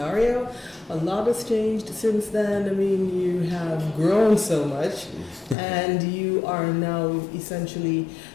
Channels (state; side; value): drops out; right; at 5.6 s